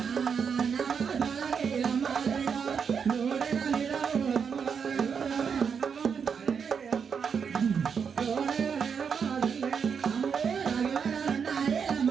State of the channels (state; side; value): quieter; left; 6.6 dB